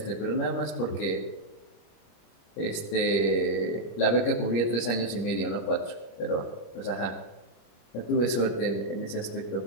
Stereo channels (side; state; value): right; late; 25 ms